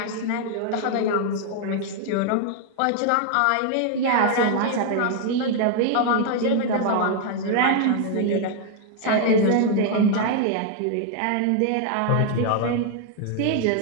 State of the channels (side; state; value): both; different; correlation 0.00